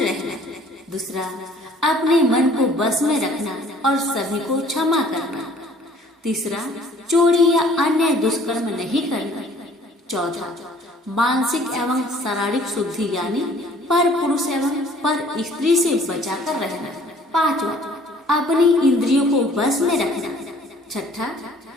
दूसरा, अपने मन को बस में रखना और सभी को क्षमा करना। तीसरा, चोरी या अन्य दुष्कर्म नहीं करना। चौथा, मानसिक एवं शारीरिक शुद्धि यानी पर पुरुष एवं पर स्त्री से बचाकर रहना। पांचवा, अपनी इंद्रियों को बस में रखना। छठा,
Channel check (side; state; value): both; normal; correlation 0.55